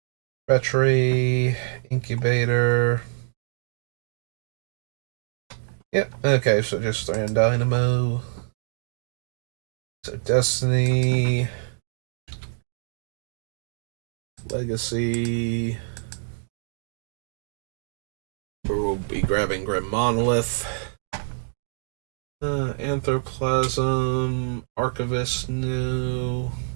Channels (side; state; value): left; silent; digital silence